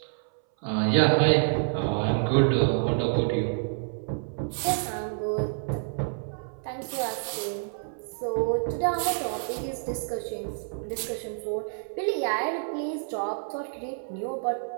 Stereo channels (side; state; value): left; silent; 59 dB below the other